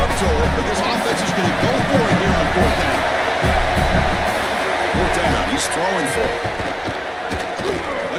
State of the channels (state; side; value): identical; both; correlation 1.00